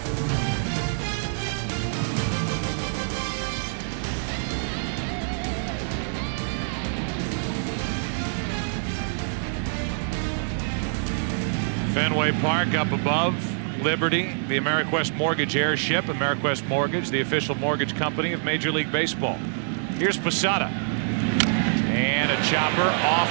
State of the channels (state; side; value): silent; left; digital silence